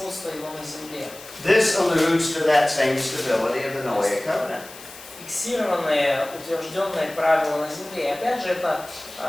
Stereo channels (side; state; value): left; noise; hiss, 17 dB below the sound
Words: его на земле. This alludes to that same stability of the Noahic covenant. Фиксированные, утвержденные правила на земле. И опять же это